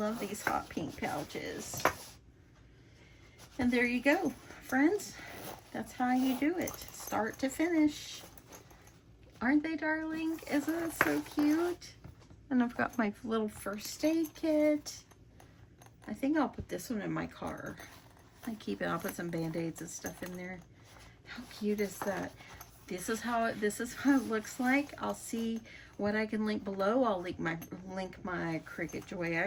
these hot pink pouches. And there you go, friends. That's how you do it, start to finish. Aren't they darling? Isn't it so cute? And I've got my little first aid kit. I think I'll put this one in my car. I'll put some band-aids and stuff in there. How cute is that? This is how it looks like. I'll see what I can link below. I'll link my Cricut Joy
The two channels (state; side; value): identical; both; correlation 1.00